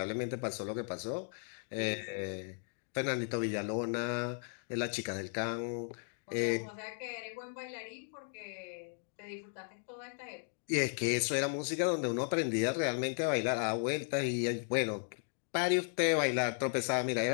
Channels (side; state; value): right; silent; 54 dB below the other